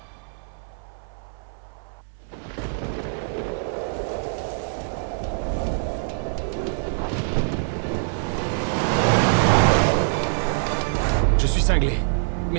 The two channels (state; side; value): silent; left; 60 dB below the other